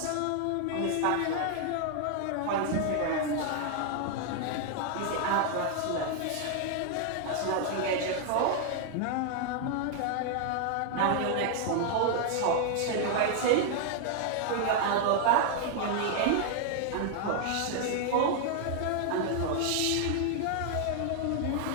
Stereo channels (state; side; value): different; both; correlation 0.00